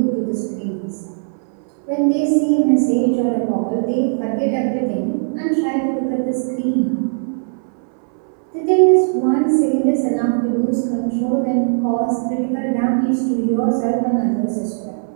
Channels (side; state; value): left; silent; 67 dB below the other